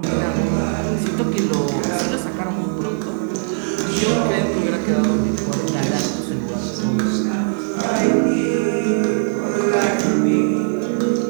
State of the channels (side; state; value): left; silent; 59 dB below the other